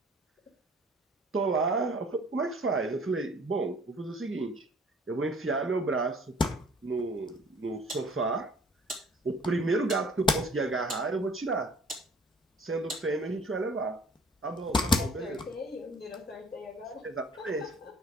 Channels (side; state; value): both; normal; correlation 0.53